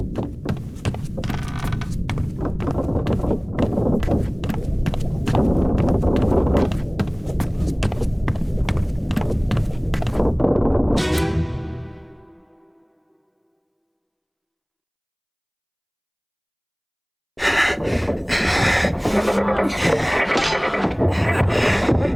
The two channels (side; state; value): both; identical; correlation 1.00